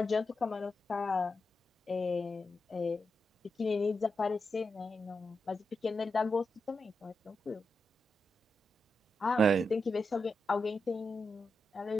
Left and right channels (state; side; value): normal; both; correlation 0.87